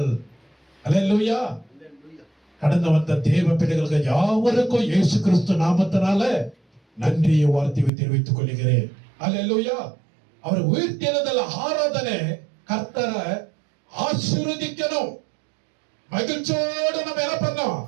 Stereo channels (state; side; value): drops out; left; at 7.9 s